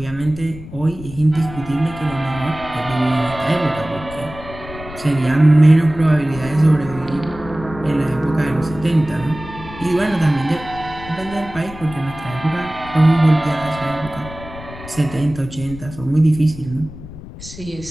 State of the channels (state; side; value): noise; left; rumble, 14 dB below the sound